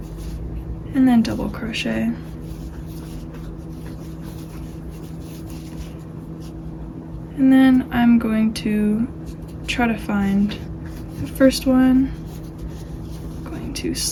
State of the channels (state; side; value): identical; both; correlation 1.00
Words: and then double crochet. And then I'm going to try to find the first one, to